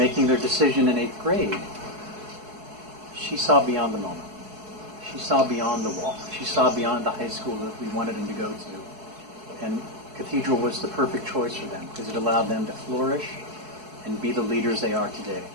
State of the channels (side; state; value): left; late; 4.7 ms